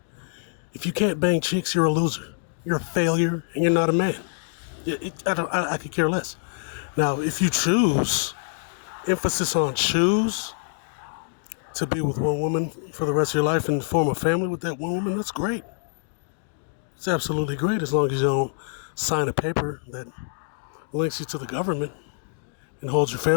If you can't bang chicks, you're a loser. You're a failure, and you're not a man. I could care less. Now, if you choose, emphasis on choose, to be with one woman for the rest of your life and form a family with that one woman, that's great. It's absolutely great as long as you don't sign a paper that links you to the government and holds your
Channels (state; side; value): silent; right; digital silence